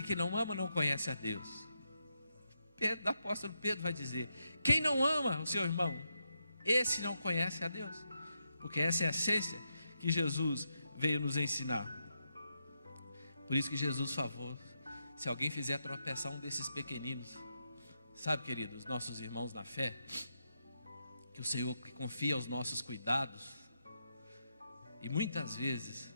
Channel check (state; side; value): inverted; both; correlation -0.83